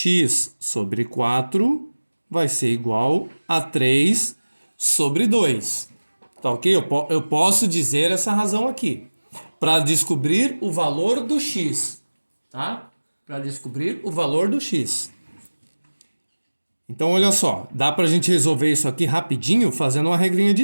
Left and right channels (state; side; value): inverted; both; correlation -1.00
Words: sobre 4 vai ser igual a 3 sobre 2. Tá ok? Eu posso dizer essa razão aqui. Para descobrir o valor do x. Tá? Para descobrir o valor do x. Então, olha só. Dá para a gente resolver isso aqui rapidinho fazendo uma regrinha